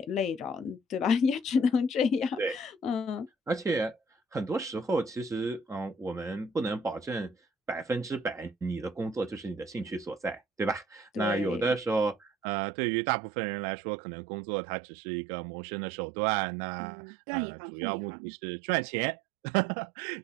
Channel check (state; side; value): drops out; left; at 12.2 s